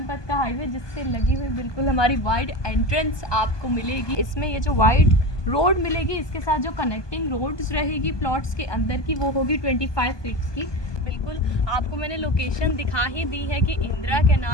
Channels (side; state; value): right; late; 1.2 ms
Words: पथ का हाईवे जिससे लगी हुई बिल्कुल हमारी वाइड एंट्रेंस आपको मिलेगी। इसमें ये जो वाइड रोड मिलेगी इसके साथ जो कनेक्टिंग रोड्स रहेगी प्लॉट्स के अंदर की वो होगी 25 फीट्स की। बिल्कुल आपको मैंने लोकेशन दिखा ही दी है कि इंदिरा